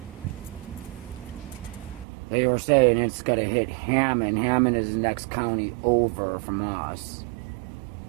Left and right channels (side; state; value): left; drops out; at 2.1 s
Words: they were saying it's gonna hit Hammond. Hammond is the next county over from us.